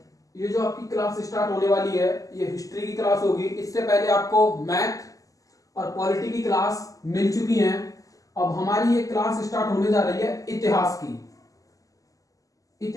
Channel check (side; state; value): right; late; 0.17 ms